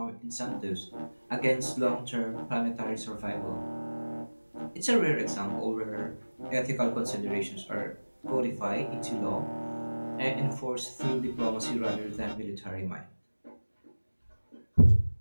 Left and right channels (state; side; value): inverted; both; correlation -1.00